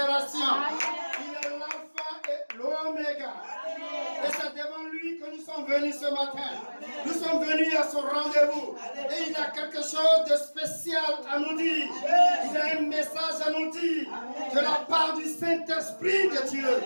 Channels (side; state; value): both; inverted; correlation -1.00